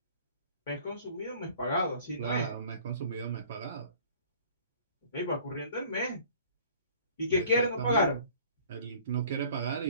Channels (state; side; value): inverted; both; correlation -0.51